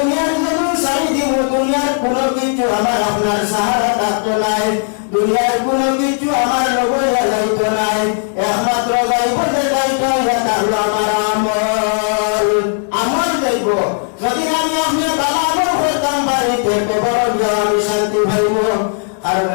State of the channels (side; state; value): right; silent; 58 dB below the other